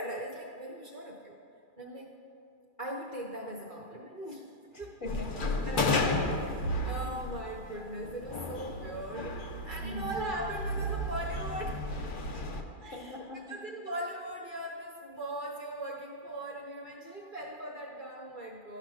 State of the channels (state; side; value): late; right; 2.4 ms